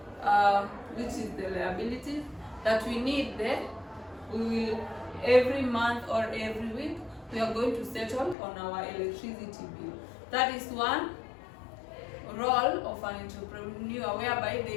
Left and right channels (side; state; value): right; drops out; at 8.3 s